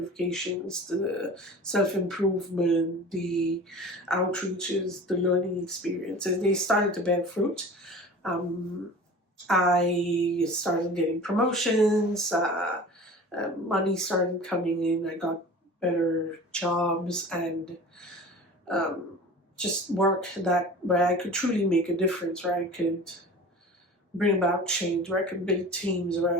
the self-improvement, the outreaches, the learning experiences, they started to bear fruit. I started getting promotions, money started coming in, I got better jobs, and just work where I could truly make a difference, where I could bring about change, where I could build teams, where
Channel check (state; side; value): normal; both; correlation 0.39